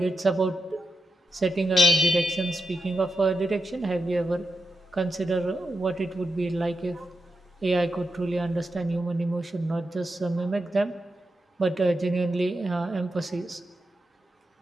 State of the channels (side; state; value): both; normal; correlation 0.87